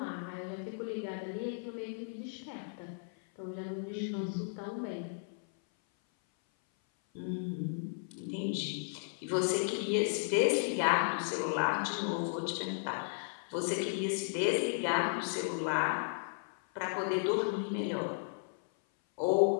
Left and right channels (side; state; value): right; silent; 55 dB below the other